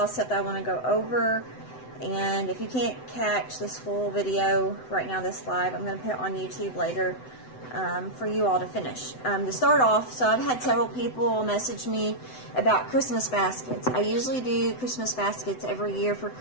of stuff that I want to go over. And if you can't catch this full video right now, this live, I'm going to put it on YouTube later for you all to finish. To start off, so I've had several people message me about Christmas baskets. I usually do Christmas baskets every year for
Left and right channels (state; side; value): late; right; 7.9 ms